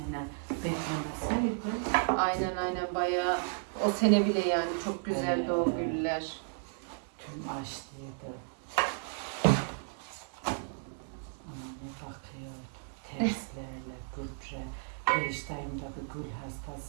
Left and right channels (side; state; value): left; silent; 55 dB below the other